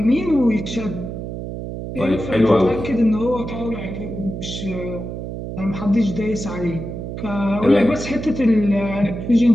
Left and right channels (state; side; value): noise; right; hum, 7 dB below the sound